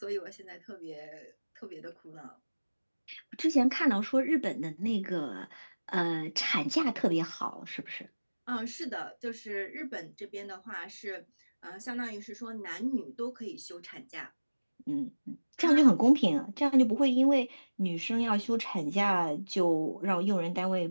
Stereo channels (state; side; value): inverted; both; correlation -1.00